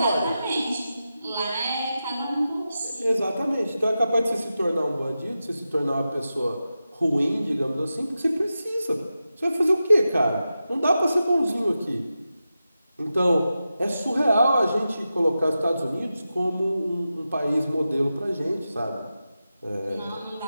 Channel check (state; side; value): inverted; both; correlation -0.91